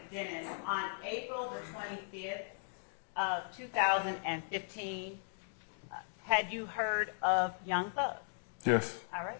Dennis, on April the 25th of 2015, had you heard of Young Thug? Yes. All right.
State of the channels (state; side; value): silent; right; digital silence